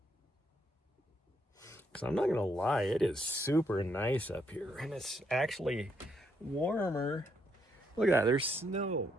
Because I'm not going to lie, it is super nice up here. And it's actually warmer. Look at that, there's snow.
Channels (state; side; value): normal; both; correlation 0.76